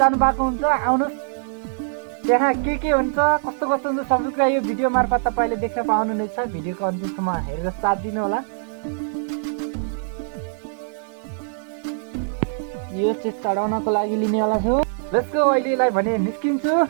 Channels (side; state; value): left; silent; 64 dB below the other